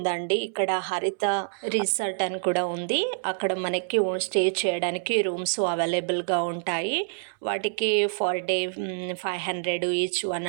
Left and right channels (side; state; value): left; silent; 60 dB below the other